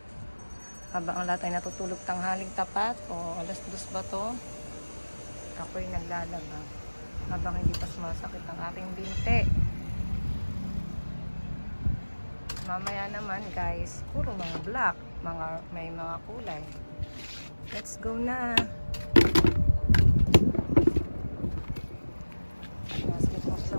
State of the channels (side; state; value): both; inverted; correlation -1.00